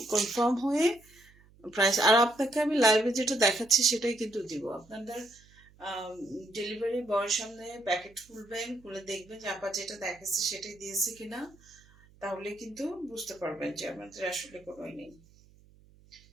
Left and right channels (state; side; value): noise; right; hum, 27 dB below the sound